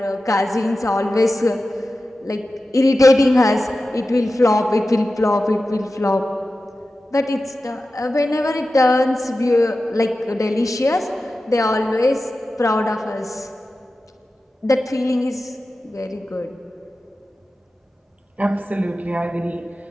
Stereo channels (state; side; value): normal; both; correlation 0.94